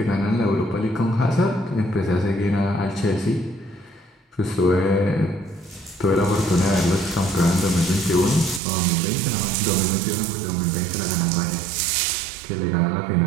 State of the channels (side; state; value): left; drops out; at 8.6 s